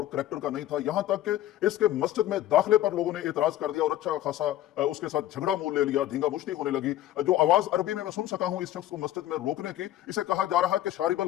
करैक्टर का नहीं था, यहां तक कि इसके मस्जिद में दाखिले पर लोगों ने एतराज कर दिया और अच्छा खासा उसके साथ झगड़ा मोल ले लिया, धींगा मुश्ती होने लगी। जो आवाज अरबी में मैं सुन सका हूं इस शख्स को मस्जिद में रोकने की, इसे कहा जा रहा है कि शारिबल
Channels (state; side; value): quieter; right; 13.6 dB